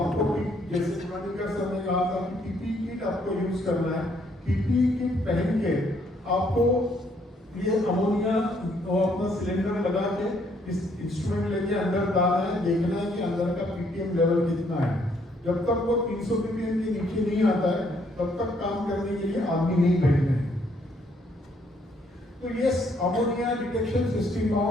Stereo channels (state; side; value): normal; both; correlation 0.68